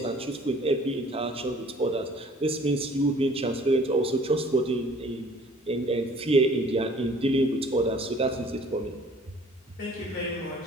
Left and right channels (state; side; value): normal; both; correlation 0.53